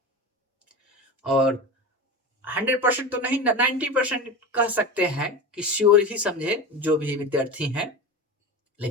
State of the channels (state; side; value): normal; both; correlation 0.26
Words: और 100% तो नहीं, 90% कह सकते हैं कि श्योर ही समझे जो भी विद्यार्थी हैं।